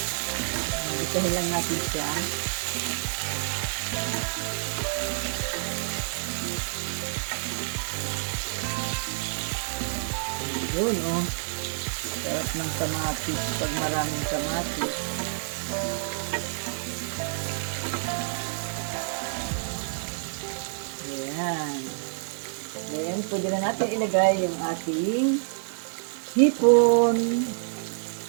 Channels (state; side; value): silent; left; 59 dB below the other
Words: Gisahin lang natin siya. Yun, oh. Sarap ng kamatis pag maraming kamatis. Ayan. Then, pwede na natin ilagay yung ating hipon.